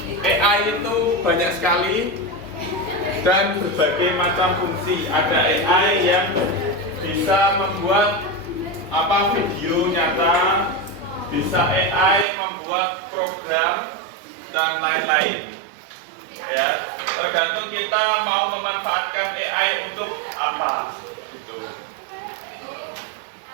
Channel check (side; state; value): left; drops out; at 12.2 s